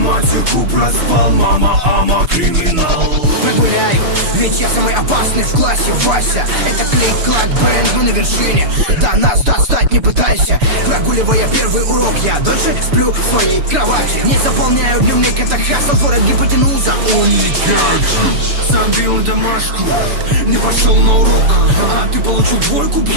проспал, мама, ама, криминал. Прогуляю, ведь я самый опасный в классе, Вася. Это клик-клак бэнд, мы на вершине. Да нас достать не пытайся. Прогуливая первый урок, я дольше сплю в своей кровати. Не заполняю дневник, это хасл, творят гипотенуза. Забил на домашку, не пошел на урок, а ты получил двойку,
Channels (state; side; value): late; left; 6.9 ms